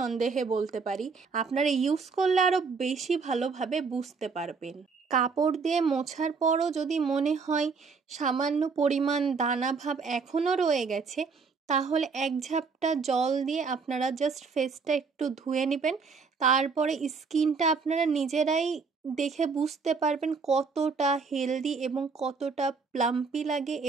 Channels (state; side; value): quieter; left; 5.0 dB